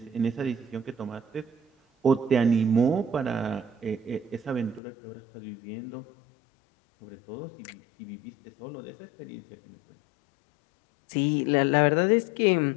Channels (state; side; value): drops out; right; at 4.8 s